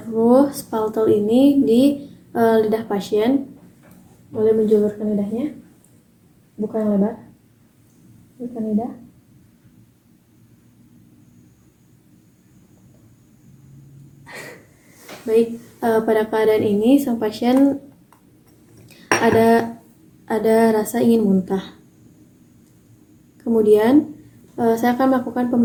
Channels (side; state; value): both; identical; correlation 1.00